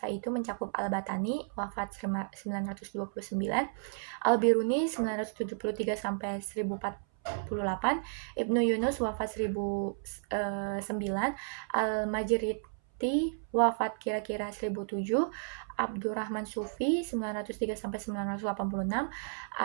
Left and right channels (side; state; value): left; silent; 56 dB below the other